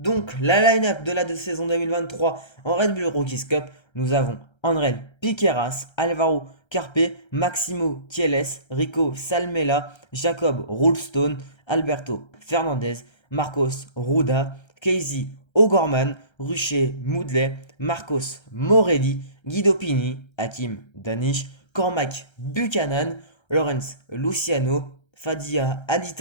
la line-up de la saison 2023 en Red Bull Rookies Cup, nous avons André Piqueras, Alvaro Carpe, Maximo Kieles, Rico Salmela, Jacob Roulstone, Alberto Fernandez, Marcos Ruda, Casey O'Gorman, Rucher Moudley, Marcos Morelli, Guido Pini, Hakim Danish, Cormac Buchanan, Lawrence Luciano, Fadia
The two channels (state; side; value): late; right; 1.3 ms